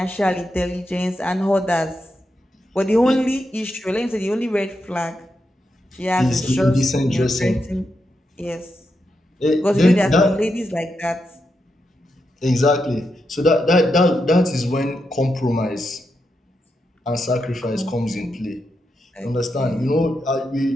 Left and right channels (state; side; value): normal; both; correlation 0.85